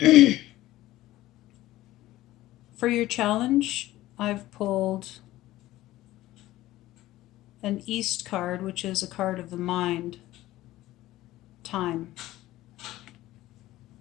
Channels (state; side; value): quieter; right; 16.2 dB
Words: For your challenge, I've pulled an East card, which is a card of the mind, time.